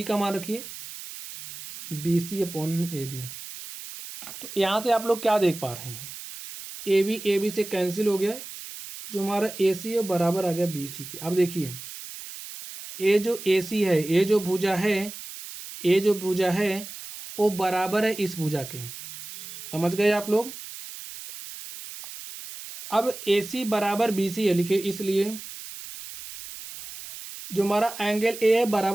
का मान रखिए B C upon A B. तो यहाँ से आप लोग क्या देख पा रहे हैं, ए बी से कैंसिल हो गया, जो हमारा ए सी है बराबर आ गया बी सी के। अब देखिए ए जो ए सी है, ए जो भुजा है, ए जो भुजा है वो बराबर है इस भुजा के, समझ गए आप लोग। अब ए सी बराबर बी सी है लिखे, इसलिए जो हमारा एंगल ए है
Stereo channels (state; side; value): noise; right; hiss, 12 dB below the sound